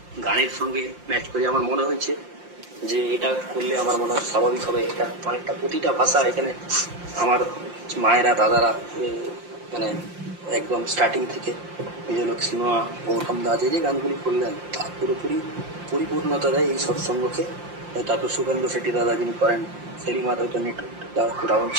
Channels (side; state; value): left; late; 5.7 ms